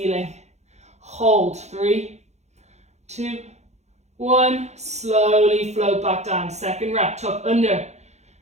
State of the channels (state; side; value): late; left; 0.33 ms